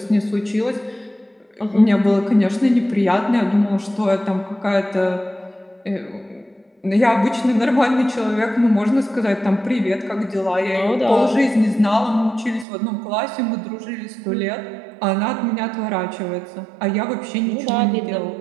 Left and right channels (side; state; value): left; drops out; at 12.7 s